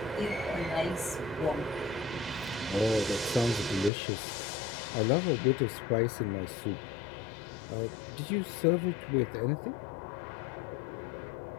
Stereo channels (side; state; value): right; drops out; at 3.9 s